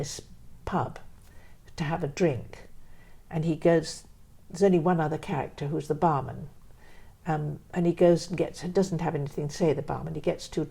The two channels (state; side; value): identical; both; correlation 1.00